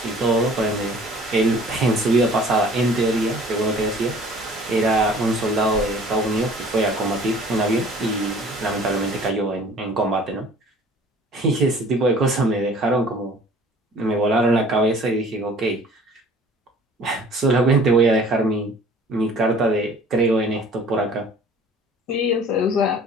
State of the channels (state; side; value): normal; both; correlation 0.50